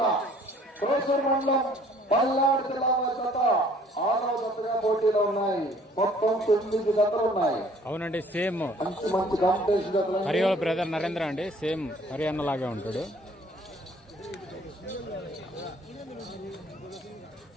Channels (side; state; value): both; normal; correlation 0.56